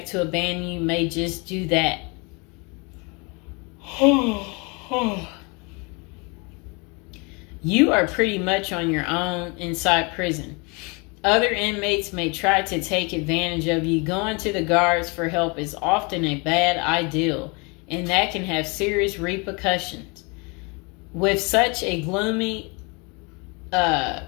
to abandon you may just do that. You are pretty much on your own inside prison. Other inmates may try to take advantage of you. Going to the guards for help is often a bad idea, and that can have serious repercussions. With such a gloomy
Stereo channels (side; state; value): right; quieter; 30.4 dB